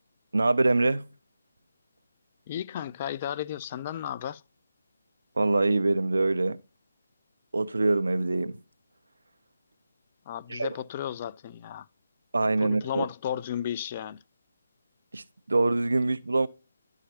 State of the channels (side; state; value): both; inverted; correlation -0.92